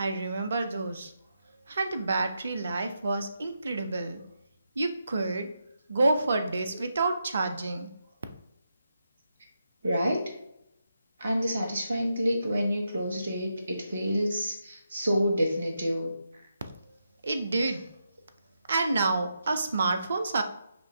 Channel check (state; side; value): inverted; both; correlation -0.84